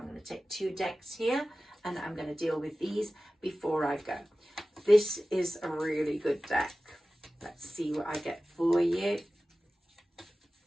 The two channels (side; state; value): both; normal; correlation 0.96